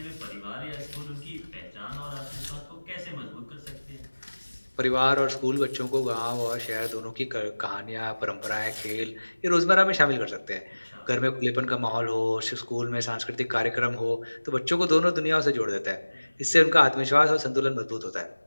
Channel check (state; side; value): inverted; both; correlation -1.00